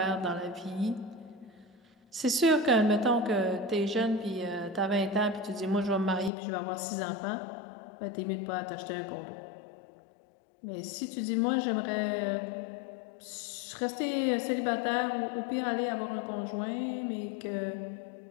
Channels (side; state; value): right; drops out; at 6.3 s